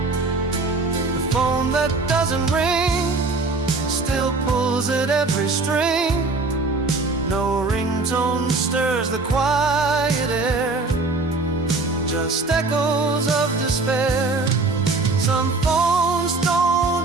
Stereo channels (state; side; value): quieter; left; 3.7 dB